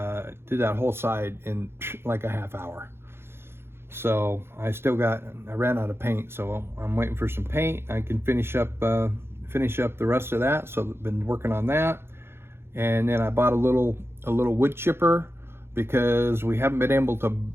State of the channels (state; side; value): late; left; 0.12 ms